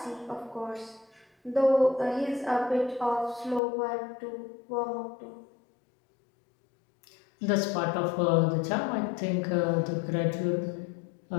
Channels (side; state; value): right; drops out; at 3.6 s